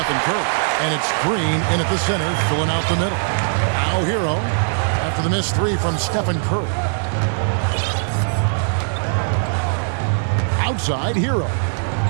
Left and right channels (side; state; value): left; silent; digital silence